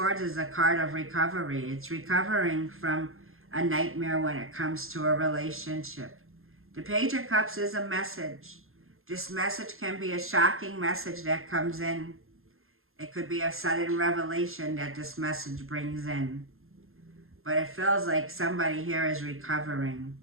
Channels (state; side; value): late; left; 0.61 ms